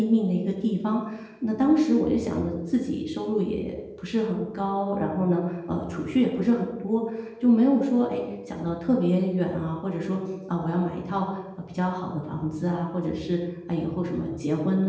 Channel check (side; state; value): both; identical; correlation 1.00